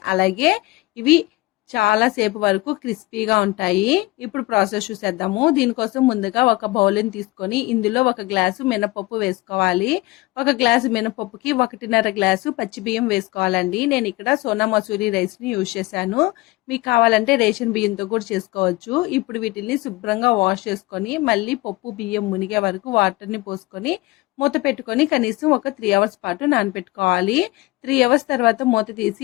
అలాగే ఇవి చాలా సేపు వరకు క్రిస్పీగా ఉంటాయి. ఇప్పుడు ప్రాసెస్ చూసేద్దాము. దీనికోసం ముందుగా ఒక బౌల్ని తీసుకొని ఇందులో ఒక గ్లాసు మినపప్పు వేసుకోవాలి. ఒక గ్లాసు మినపప్పుకి 1.5 గ్లాసు పచ్చి బియ్యం వేసుకోవాలండి. నేను ఇక్కడ సోనా మసూరి రైస్ని యూజ్ చేశాను. మీకు కావాలంటే రేషన్ బియ్యంతో కూడా చేసుకోవచ్చు. ఇప్పుడు వీటిని శుభ్రంగా వాష్ చేసుకొని మళ్ళీ పప్పు బియ్యం మునిగే వరకు వాటర్ని పోసుకొని మూత పెట్టుకొని కనీసం ఒక 3 అవర్స్ పాటు నానబెట్టుకోవాలి. 3 అవర్స్ తర్వాత మూత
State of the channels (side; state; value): right; quieter; 20.8 dB